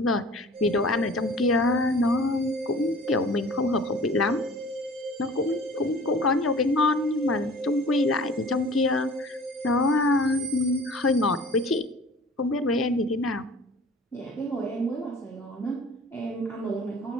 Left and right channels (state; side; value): normal; both; correlation 0.46